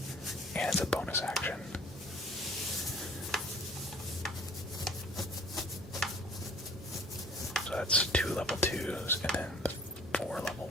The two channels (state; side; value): normal; both; correlation 0.52